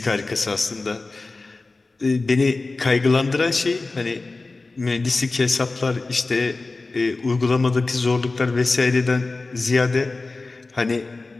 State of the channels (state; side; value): quieter; right; 3.5 dB